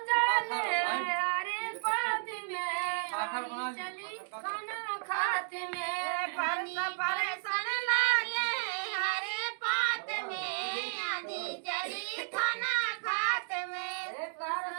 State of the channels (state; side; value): silent; left; digital silence